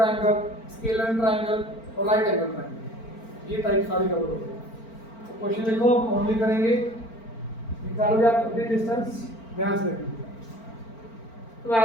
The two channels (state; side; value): late; right; 4.4 ms